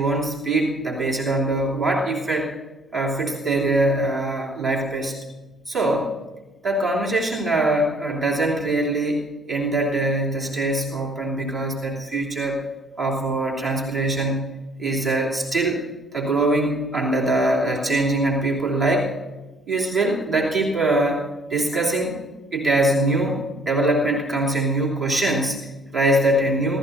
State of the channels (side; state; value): both; normal; correlation 0.58